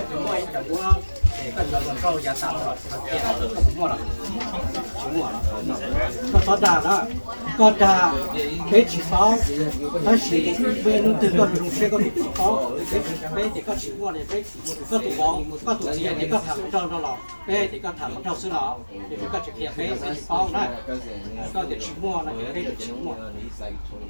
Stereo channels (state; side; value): inverted; both; correlation -1.00